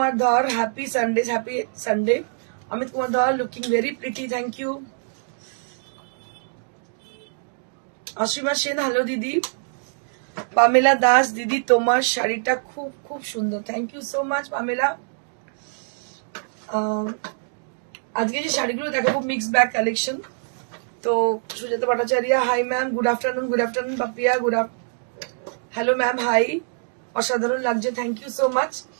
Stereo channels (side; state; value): left; silent; digital silence